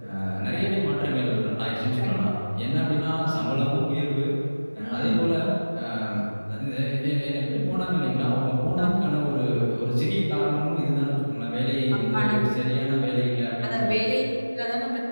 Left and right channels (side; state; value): both; inverted; correlation -1.00